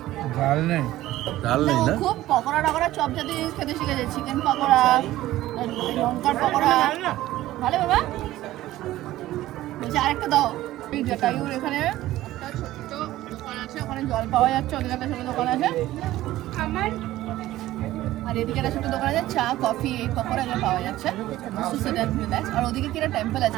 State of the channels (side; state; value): left; quieter; 15.4 dB